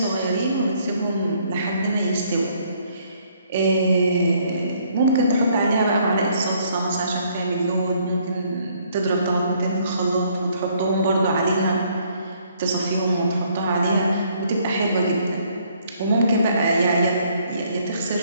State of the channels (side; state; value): both; inverted; correlation -0.66